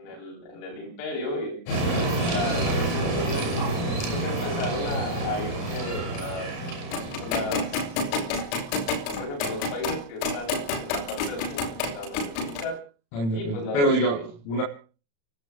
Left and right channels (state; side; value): late; right; 35 ms